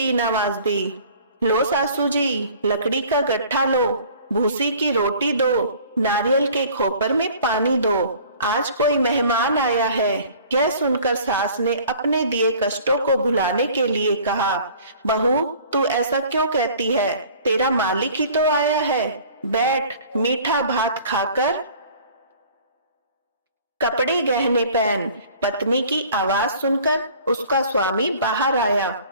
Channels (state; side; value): inverted; both; correlation -0.49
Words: आवाज दी, लो सासू जी, लकड़ी का गट्ठा लो, भूसी की रोटी दो, नारियल के खोपर में पानी दो, आज कोई मेहमान आया है। यह सुनकर सास ने अपने दिए कष्टों को भुलाने के लिए कहा, बहू, तू ऐसा क्यों कहती है? तेरा मालिक ही तो आया है। बैठ, मीठा भात खाकर कपड़े गहने पहन। पत्नी की आवाज सुनकर उसका स्वामी बाहर आया